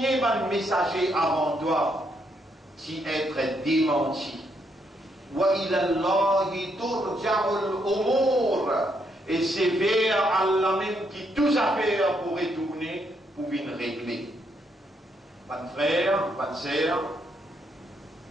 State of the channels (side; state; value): both; normal; correlation 0.76